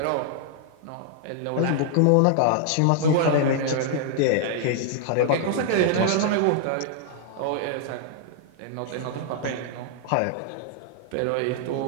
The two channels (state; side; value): different; both; correlation 0.00